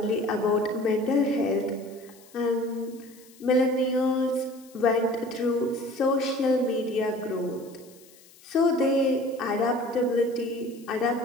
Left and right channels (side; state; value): left; noise; hiss, 25 dB below the sound